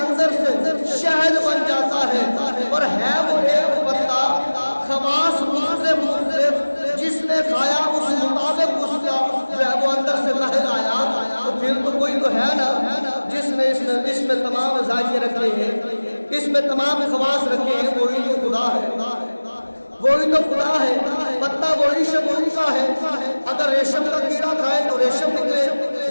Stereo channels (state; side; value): inverted; both; correlation -1.00